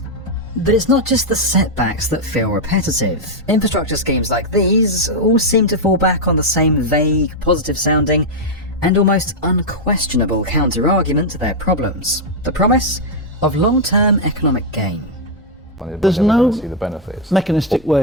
But it's not just the setbacks that feel repetitive. Infrastructure schemes like these all seem to fall back on the same vague, positive-sounding and almost unquestionable counter-argument to their problems. The promise of long-term economic gain. There's no mechanistic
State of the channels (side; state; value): both; normal; correlation -0.01